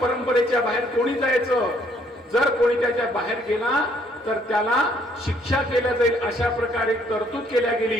बाहेर कोणी जायचं, जर कोणी त्याच्या बाहेर गेला तर त्याला शिक्षा केल्या जाईल अशा प्रकारे तरतूद केल्या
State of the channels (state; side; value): normal; both; correlation 0.66